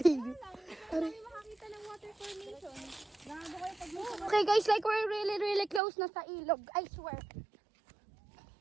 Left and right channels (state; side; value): drops out; left; at 5.8 s